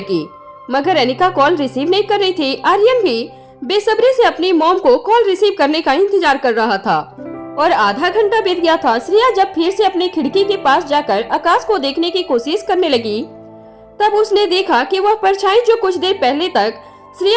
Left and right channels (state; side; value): identical; both; correlation 1.00